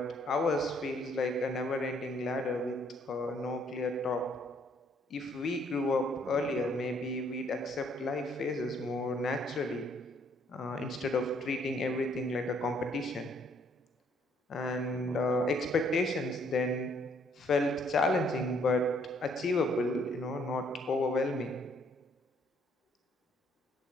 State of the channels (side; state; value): both; normal; correlation 0.66